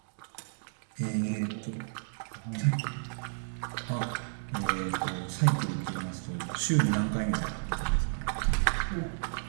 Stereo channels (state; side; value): silent; left; digital silence